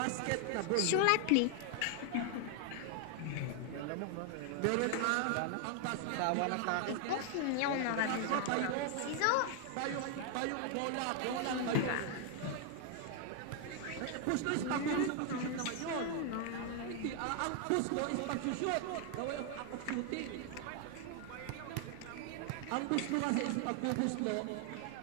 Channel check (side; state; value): both; different; correlation 0.00